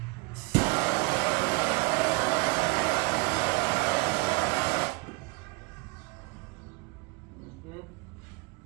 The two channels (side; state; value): left; quieter; 27.4 dB